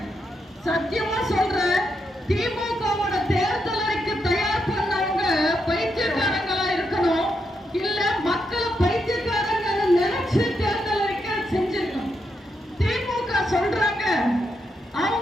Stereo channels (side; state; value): both; normal; correlation 0.82